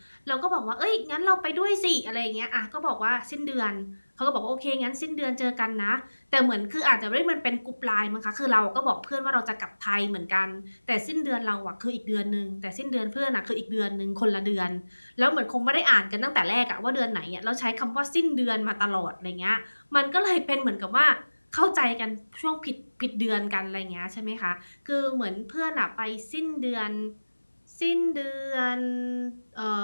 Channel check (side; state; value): both; inverted; correlation -1.00